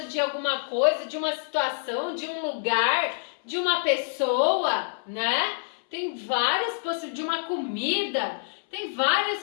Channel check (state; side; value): silent; right; 60 dB below the other